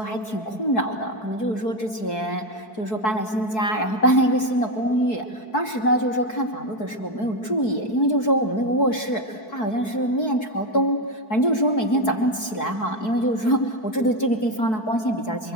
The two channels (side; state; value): right; late; 4.6 ms